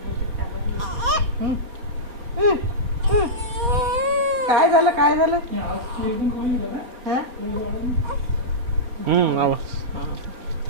ताकद काय झालं काय झालं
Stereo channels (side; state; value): left; late; 4.2 ms